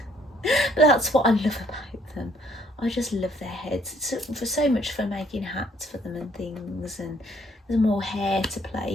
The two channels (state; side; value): normal; both; correlation 0.64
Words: that's what I love about them. I just love their heads. It's for so much fun making hats for them and things, and there's more hair to